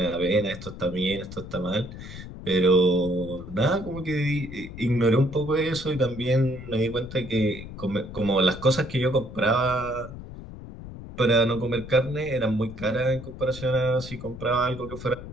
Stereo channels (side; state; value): left; noise; rumble, 12 dB below the sound